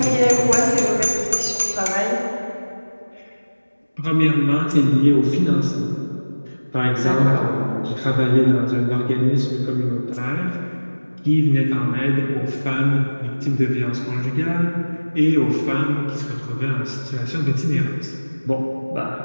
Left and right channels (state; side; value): inverted; both; correlation -1.00